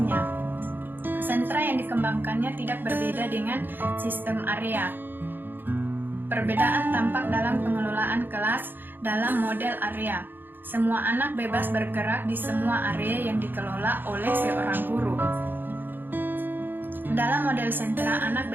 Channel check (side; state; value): left; late; 0.094 ms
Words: Sentra yang dikembangkannya tidak berbeda dengan sistem area. Perbedaan tampak dalam pengelolaan kelas dalam model area. Semua anak bebas bergerak di semua area yang dikelola oleh seorang guru. Dalam model sentra, anak